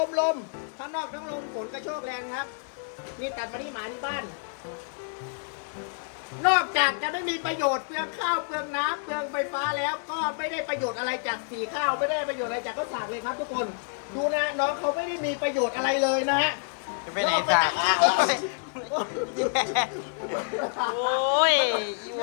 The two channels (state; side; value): silent; right; digital silence